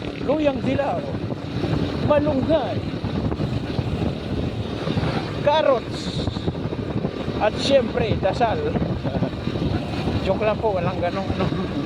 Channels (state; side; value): identical; both; correlation 1.00